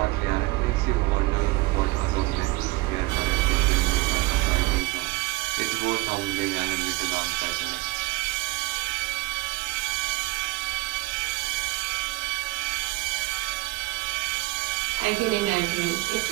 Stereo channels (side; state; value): left; quieter; 21.0 dB